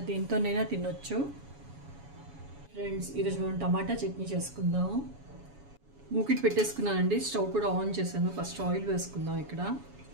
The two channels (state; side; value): late; left; 7.1 ms